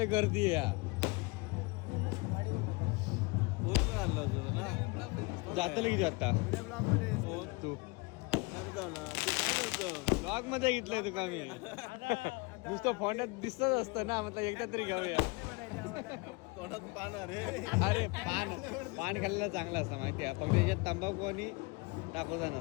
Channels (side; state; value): right; quieter; 27.0 dB